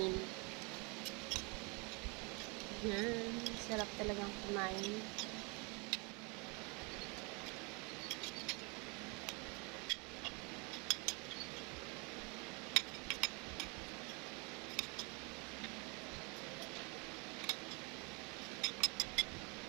Yan, sarap talagang kumain.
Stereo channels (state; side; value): quieter; left; 30.8 dB